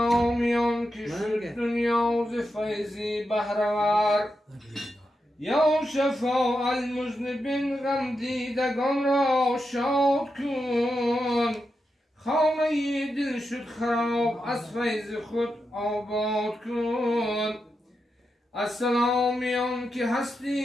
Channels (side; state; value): both; normal; correlation 0.87